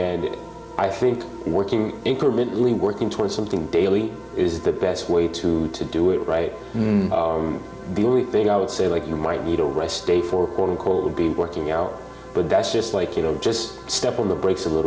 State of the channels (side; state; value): both; identical; correlation 1.00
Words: I think incrementally working towards something daily is the best way to do it, right? The only thing I would say, like, you might need a rest day for, quote unquote, would be working out. But that's just like, you know, just step on the brakes a